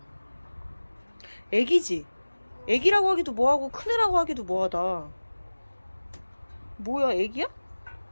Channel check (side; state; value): both; inverted; correlation -1.00